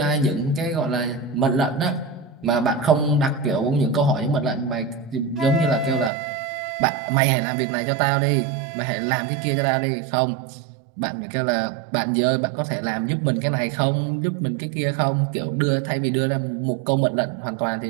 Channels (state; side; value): drops out; left; at 6.1 s